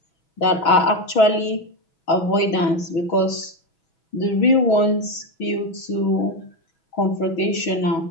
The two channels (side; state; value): right; late; 6.2 ms